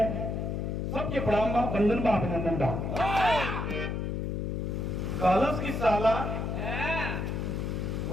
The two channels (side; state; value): left; noise; hum, 2 dB below the sound